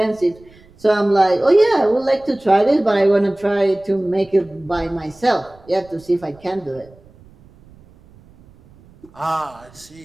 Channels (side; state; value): right; noise; rumble, 26 dB below the sound